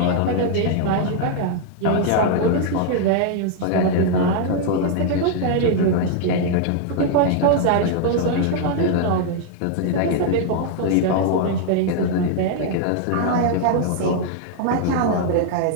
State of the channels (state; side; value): different; both; correlation 0.00